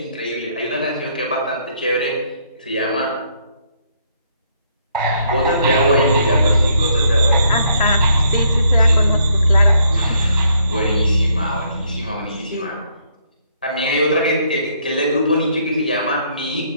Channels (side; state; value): both; inverted; correlation -0.70